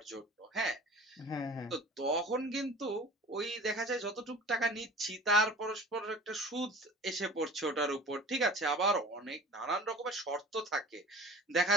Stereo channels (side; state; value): both; normal; correlation 0.42